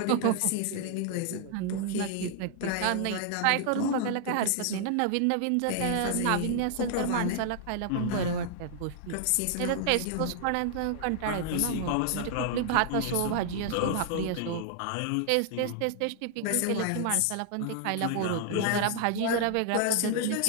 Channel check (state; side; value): different; both; correlation 0.00